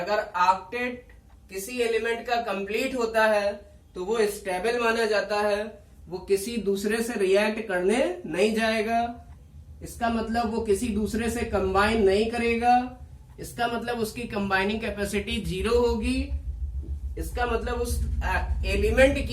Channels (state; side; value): identical; both; correlation 1.00